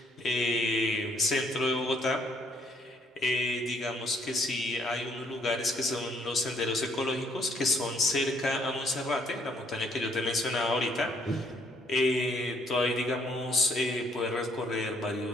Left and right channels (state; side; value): normal; both; correlation 0.66